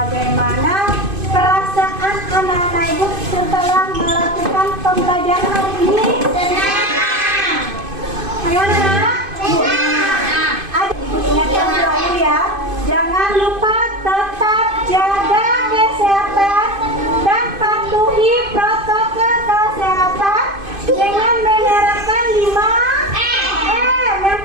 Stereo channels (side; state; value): left; late; 2.5 ms